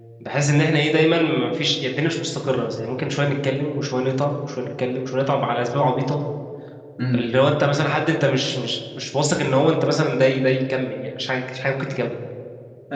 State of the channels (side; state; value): both; identical; correlation 1.00